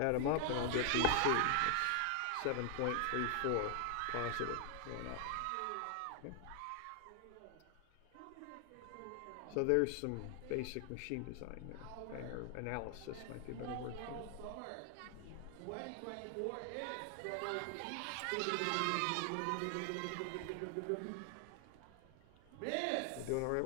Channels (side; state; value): both; different; correlation 0.00